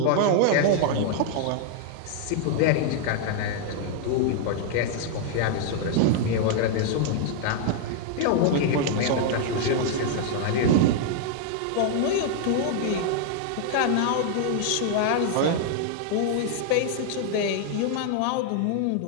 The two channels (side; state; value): both; different; correlation 0.00